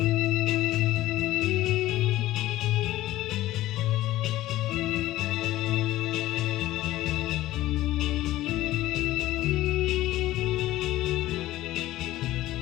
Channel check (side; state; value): right; quieter; 15.7 dB